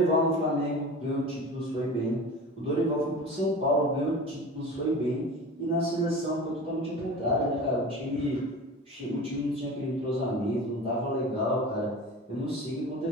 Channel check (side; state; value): both; normal; correlation 0.34